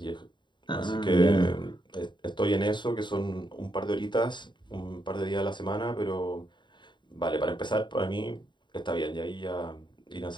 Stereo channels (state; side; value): late; right; 0.22 ms